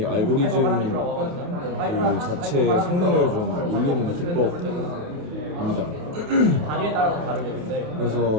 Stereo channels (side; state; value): left; late; 28 ms